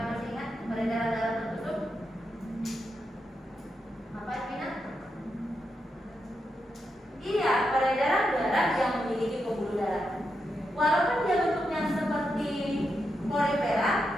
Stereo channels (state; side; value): normal; both; correlation 0.85